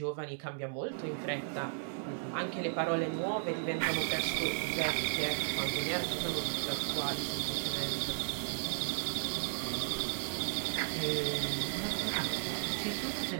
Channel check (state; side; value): silent; left; 54 dB below the other